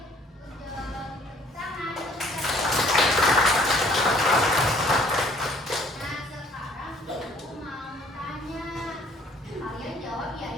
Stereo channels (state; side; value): normal; both; correlation 0.59